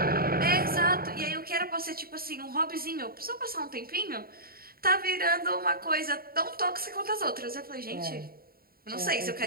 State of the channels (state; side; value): late; left; 0.43 ms